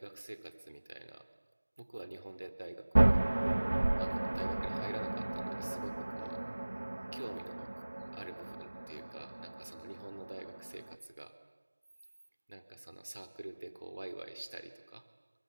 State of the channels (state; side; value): inverted; both; correlation -1.00